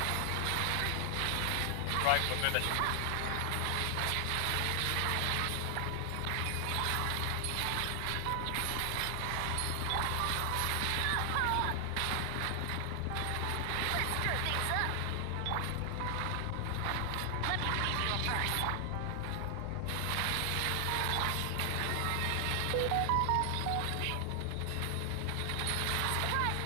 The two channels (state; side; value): different; both; correlation 0.00